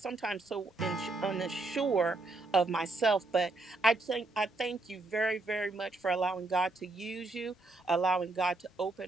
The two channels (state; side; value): quieter; left; 3.1 dB